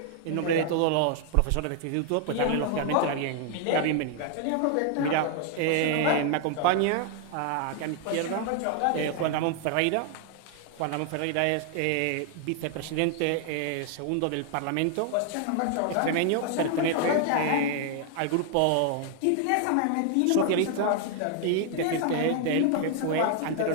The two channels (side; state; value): both; different; correlation 0.00